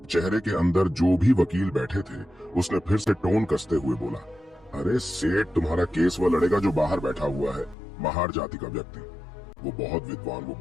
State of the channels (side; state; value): right; drops out; at 7.8 s